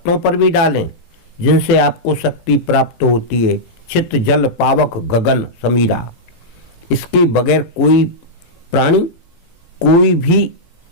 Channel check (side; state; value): right; late; 18 ms